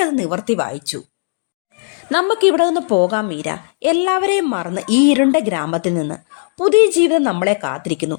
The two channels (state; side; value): silent; right; digital silence